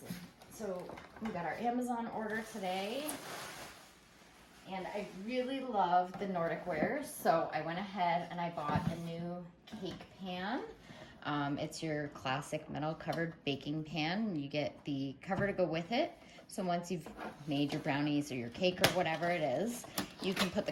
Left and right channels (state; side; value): identical; both; correlation 1.00